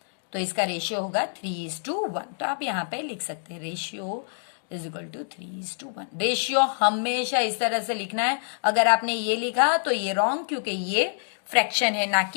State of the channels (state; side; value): silent; right; digital silence